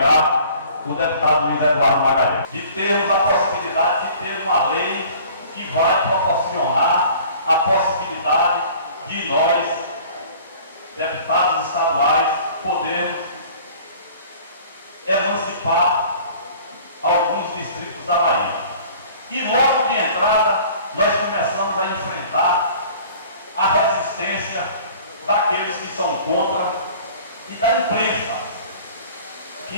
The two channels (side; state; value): both; inverted; correlation -0.48